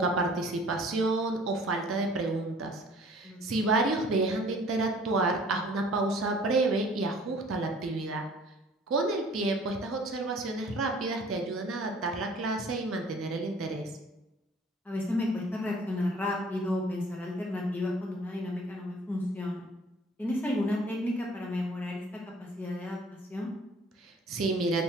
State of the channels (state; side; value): normal; both; correlation 0.52